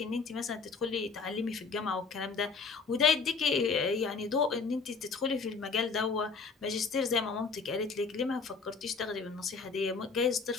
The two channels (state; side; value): quieter; right; 4.8 dB